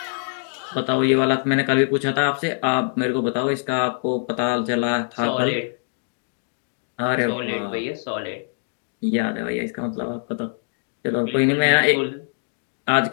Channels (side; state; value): right; silent; 63 dB below the other